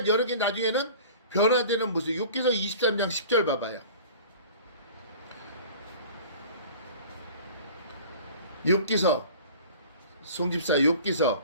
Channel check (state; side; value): inverted; both; correlation -0.43